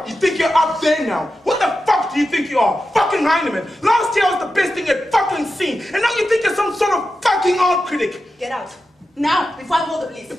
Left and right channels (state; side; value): normal; both; correlation 0.91